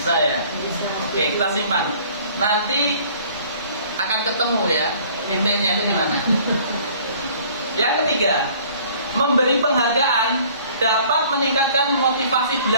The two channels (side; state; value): both; inverted; correlation -0.53